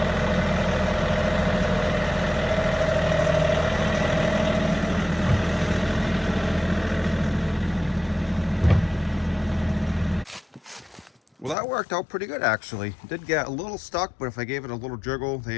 Well, that worked out pretty good, actually. It did get a little stuck, but if I gave it a little jiggle, they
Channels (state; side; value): drops out; right; at 11.6 s